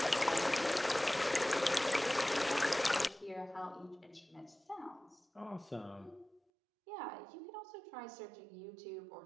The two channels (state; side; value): drops out; left; at 6.4 s